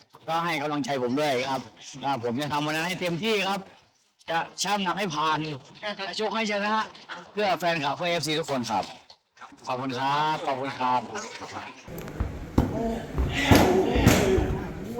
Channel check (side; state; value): both; identical; correlation 1.00